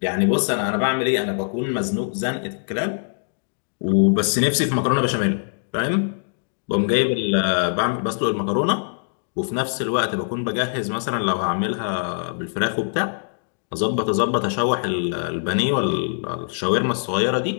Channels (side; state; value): right; silent; digital silence